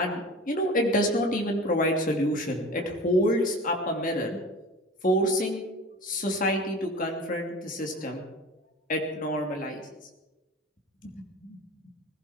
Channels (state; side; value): normal; both; correlation 0.36